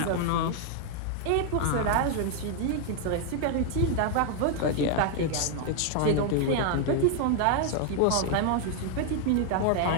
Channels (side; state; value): both; different; correlation 0.00